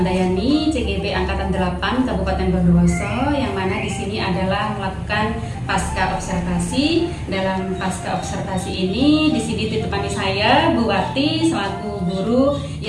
CGB Angkatan 8 Kabupaten Bondowoso, yang mana di sini adalah melakukan pasca observasi. Dalam pasca observasi ini, di sini ditemani saya Bu Wati selaku guru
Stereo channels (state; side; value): identical; both; correlation 1.00